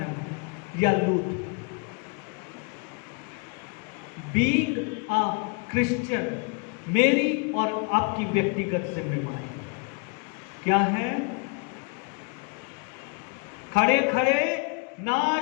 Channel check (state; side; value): quieter; right; 35.3 dB